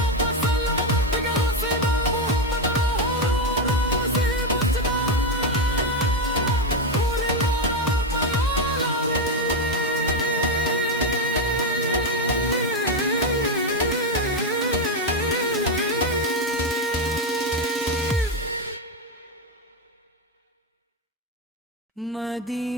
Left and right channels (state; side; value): normal; both; correlation 0.08